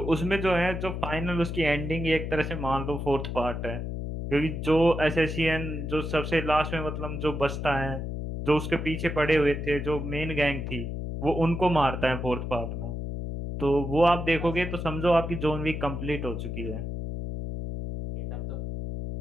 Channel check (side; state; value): left; noise; hum, 4 dB below the sound